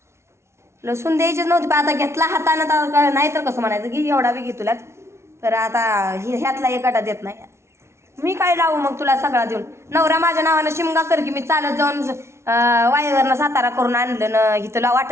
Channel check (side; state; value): left; late; 0.13 ms